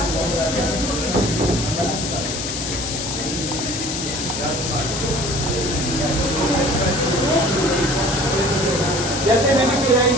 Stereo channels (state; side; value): noise; left; hiss, 4 dB below the sound